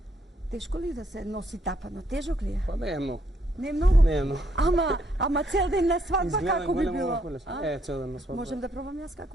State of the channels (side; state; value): both; normal; correlation 0.72